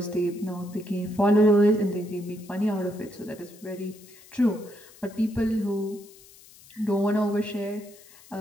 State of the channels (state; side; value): noise; left; hiss, 23 dB below the sound